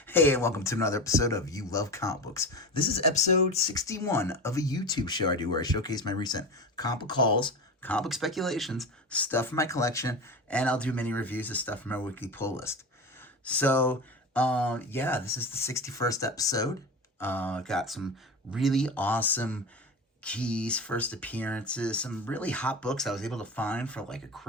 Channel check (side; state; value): both; normal; correlation 0.26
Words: Hey, and welcome to another episode of You Love Comic Books. This is episode 61 of a YouTube show I do where I showcase my recent comic book hauls, comic book speculations, stuff from my collection, and I'll do mini reviews of stuff from my weekly pull list. So, this is the 61st episode. Got some really awesome keys, first appearances, some really hot books I was able to find for like a